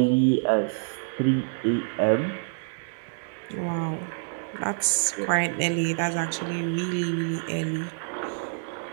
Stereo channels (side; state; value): left; silent; digital silence